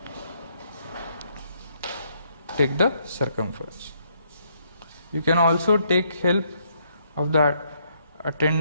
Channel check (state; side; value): inverted; both; correlation -0.71